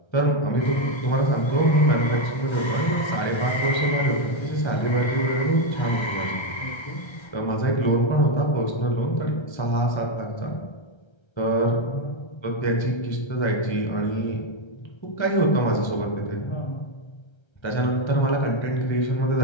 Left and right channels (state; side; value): late; right; 1.3 ms